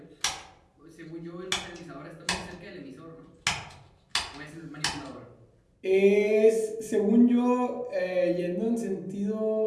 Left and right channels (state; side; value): identical; both; correlation 1.00